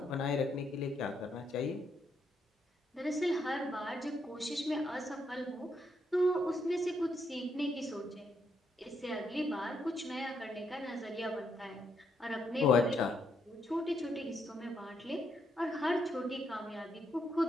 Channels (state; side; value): normal; both; correlation 0.77